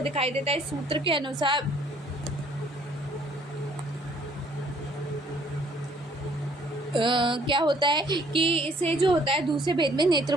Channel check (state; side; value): normal; both; correlation 0.61